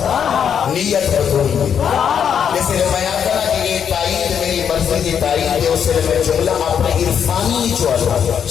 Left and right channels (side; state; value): right; quieter; 7.9 dB